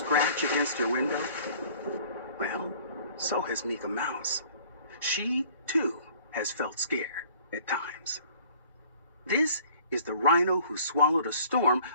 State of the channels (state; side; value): inverted; both; correlation -0.52